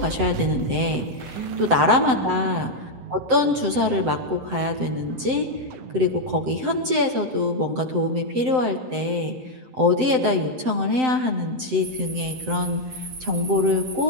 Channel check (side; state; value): left; late; 7.8 ms